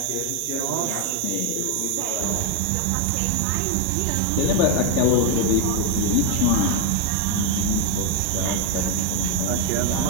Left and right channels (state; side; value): different; both; correlation 0.01